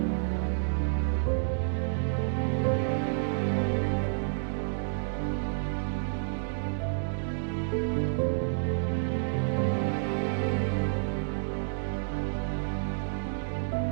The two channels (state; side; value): silent; left; digital silence